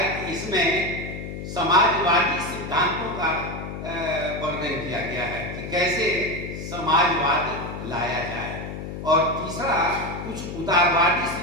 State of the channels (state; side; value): noise; left; hum, 8 dB below the sound